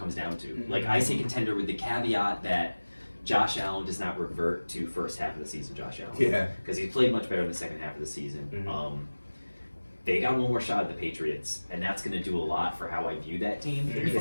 down to. Like I say contender with the caveat that Josh Allen does not revert to first half of the season. Josh Allen, yeah, because he played much better in the second half of the season. They got one more shot at the Patriots, and that's going to do a lot for how I view that team.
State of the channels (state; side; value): inverted; both; correlation -1.00